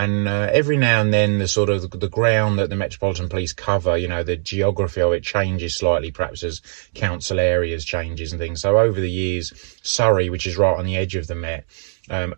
every now and then the ground that the Metropolitan Police cover, the geography of it changes slightly, perhaps as council areas changes and things. So over the years, Surrey, which is right on the edge of the Met,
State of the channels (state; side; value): silent; left; digital silence